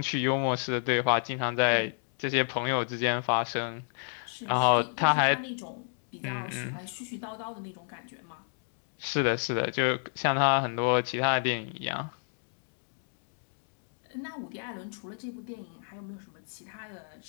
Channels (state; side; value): silent; right; digital silence